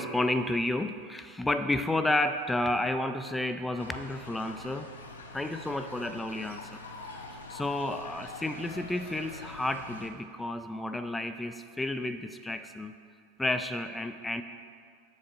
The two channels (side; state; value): both; normal; correlation 0.80